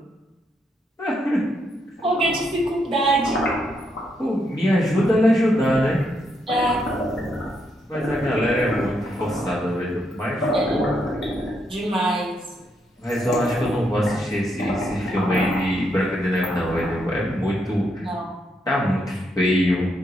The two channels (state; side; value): normal; both; correlation 0.78